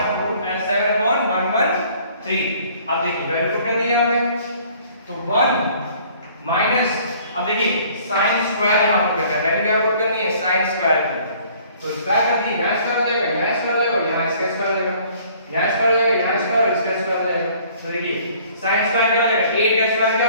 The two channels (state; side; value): inverted; both; correlation -0.56